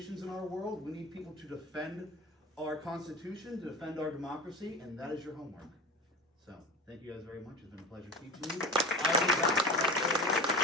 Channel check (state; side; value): normal; both; correlation 0.32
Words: in our world. We need people to defend our Constitution, to defend our democracy, and that is your homework. So, thank you guys very much. It's been a pleasure teaching you. I'll be back.